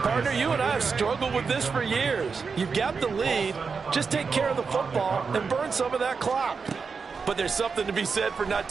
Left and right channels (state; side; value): quieter; left; 5.2 dB